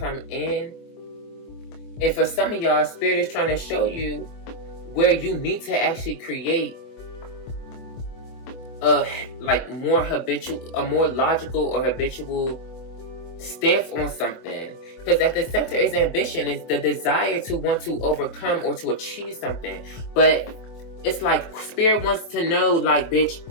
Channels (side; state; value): right; late; 24 ms